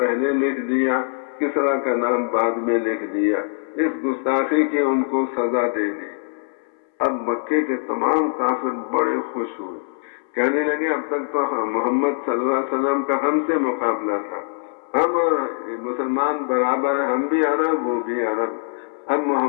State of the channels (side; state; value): right; silent; 61 dB below the other